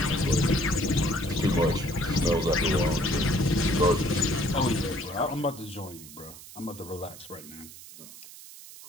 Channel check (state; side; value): noise; right; hiss, 17 dB below the sound